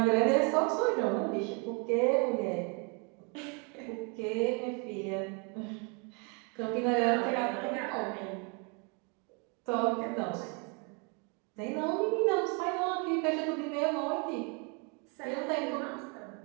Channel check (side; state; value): left; quieter; 34.3 dB